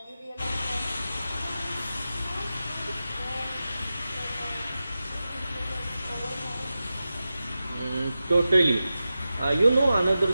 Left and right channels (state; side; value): inverted; both; correlation -0.93